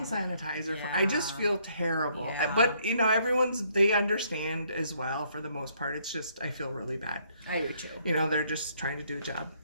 sanitizer. I just feel terrible. Yeah. But, they understand as well for the most part. It's just, I feel really bad. I do too. They're just trying to do a job.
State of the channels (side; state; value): both; inverted; correlation -0.68